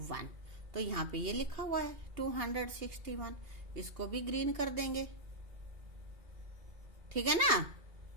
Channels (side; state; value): left; late; 2.7 ms